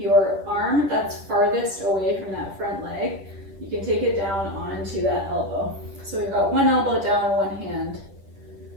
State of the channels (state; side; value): late; left; 10 ms